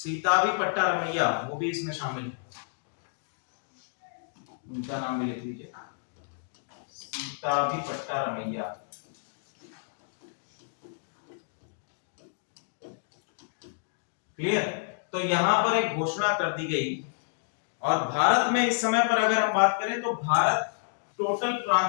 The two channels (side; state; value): right; silent; digital silence